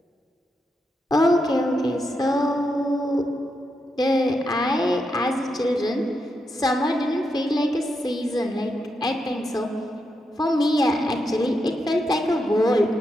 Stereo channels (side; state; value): both; normal; correlation 0.84